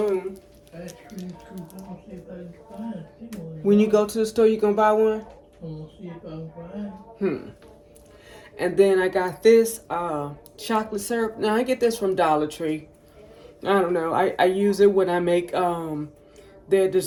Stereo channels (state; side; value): identical; both; correlation 1.00